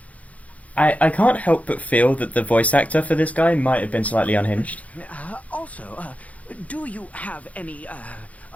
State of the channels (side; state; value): right; late; 0.068 ms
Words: I can't help but feel that the voice actor for this guy might have been slightly unhinged. Also, do you have any